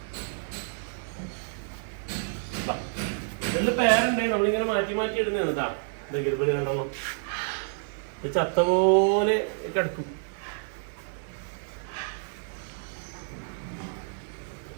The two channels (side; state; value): left; silent; digital silence